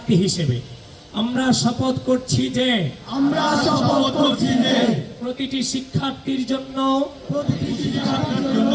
হিসেবে আমরা শপথ করছি যে প্রতিটি শিক্ষার্থীর জন্য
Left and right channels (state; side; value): identical; both; correlation 1.00